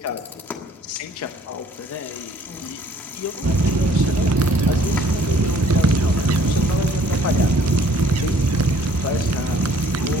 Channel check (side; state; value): both; normal; correlation 0.59